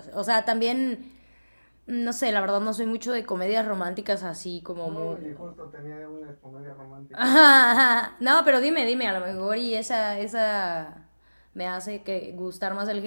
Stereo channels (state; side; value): inverted; both; correlation -1.00